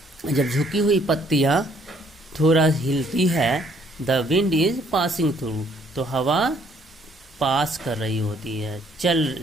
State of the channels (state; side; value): normal; both; correlation 0.64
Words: जब झुकी हुई पत्तियां थोड़ा हिलती है, the wind is passing through, तो हवा पास कर रही होती है, चल